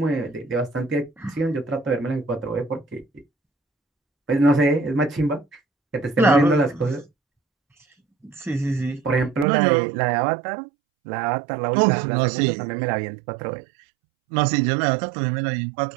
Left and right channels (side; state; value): left; drops out; at 9.5 s